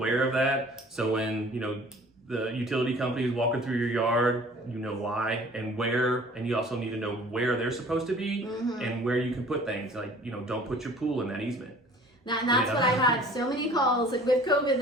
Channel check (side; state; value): both; normal; correlation 0.49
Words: of that. So when, the utility company is walking through your yard, you know why and where, and you also need to know where they're supposed to be and where you can put things. Like, don't put your pool in that easement. And that's what I've had so many calls, like with COVID